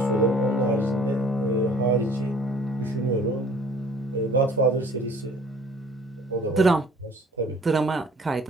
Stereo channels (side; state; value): both; normal; correlation 0.52